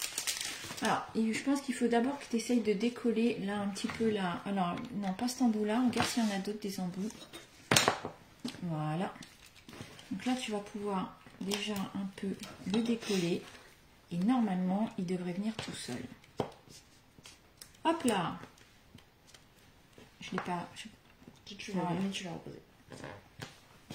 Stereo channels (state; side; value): identical; both; correlation 1.00